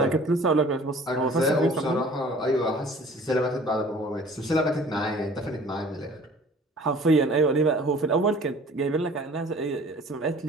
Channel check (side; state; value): both; normal; correlation 0.49